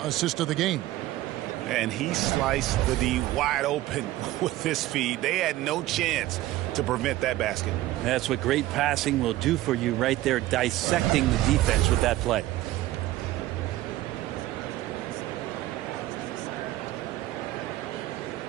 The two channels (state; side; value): quieter; left; 16.0 dB